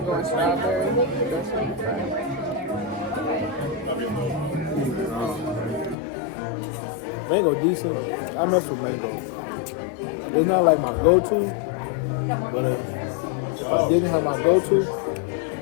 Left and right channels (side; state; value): right; drops out; at 6.0 s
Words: and strawberry. That's what I'm trying. Mango decent. I mess with mango. It's not like my go-to, but if I didn't have my go-to,